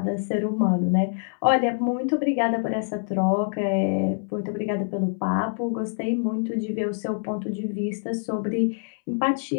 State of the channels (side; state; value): right; silent; 62 dB below the other